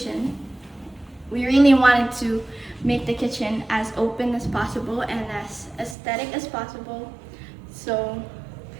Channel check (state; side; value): drops out; left; at 6.0 s